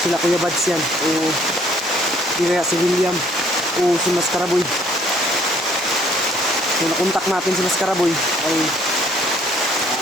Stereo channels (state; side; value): normal; both; correlation 0.61